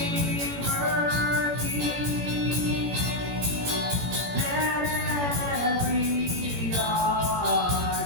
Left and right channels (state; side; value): late; left; 17 ms